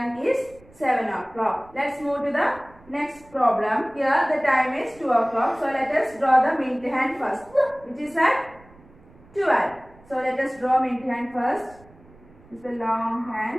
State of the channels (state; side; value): noise; right; rumble, 26 dB below the sound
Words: is 7 o'clock. Let's move to the next problem. Here the time is 2 o'clock. So let us draw the minute hand first, which is at 12. So let us draw minute hand first. This is the long